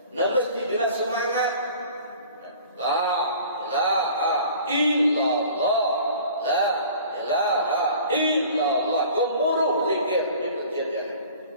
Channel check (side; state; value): both; inverted; correlation -0.46